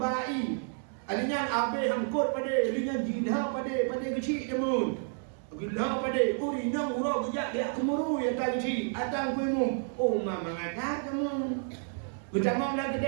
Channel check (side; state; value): left; silent; 58 dB below the other